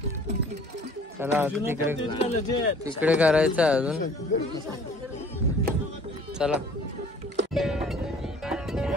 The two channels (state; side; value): normal; both; correlation 0.52